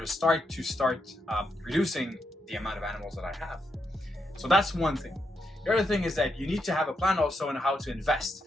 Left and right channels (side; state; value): both; normal; correlation 0.82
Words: start reducing the amount of animals that I have. So that's one thing. The other thing is that you need to have a plan also on how to invest.